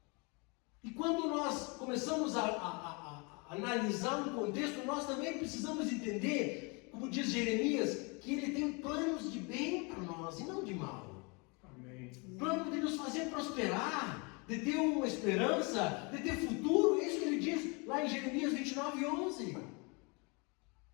E quando nós começamos a analisar um contexto, nós também precisamos entender, como diz Jeremias, que Ele tem planos de bem para nós e não de mal. Amém. Plano de nos fazer prosperar, de ter uma esperança, de ter futuro. É isso que Ele diz lá em Jeremias 29:11.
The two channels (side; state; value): right; quieter; 30.6 dB